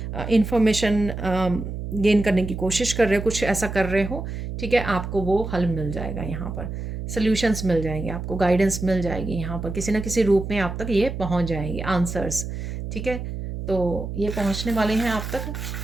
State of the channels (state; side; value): noise; right; hum, 6 dB below the sound